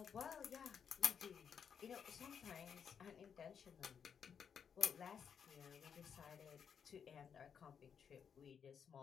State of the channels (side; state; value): right; quieter; 7.3 dB